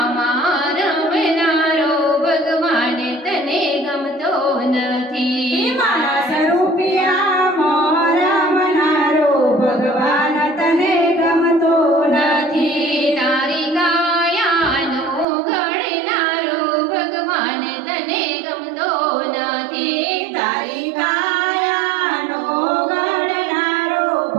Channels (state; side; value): drops out; left; at 15.2 s